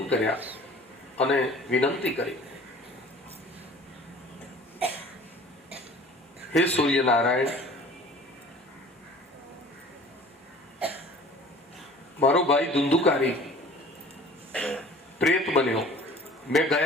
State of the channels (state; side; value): normal; both; correlation 0.47